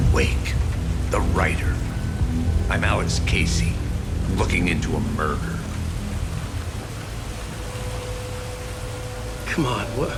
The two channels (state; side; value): identical; both; correlation 1.00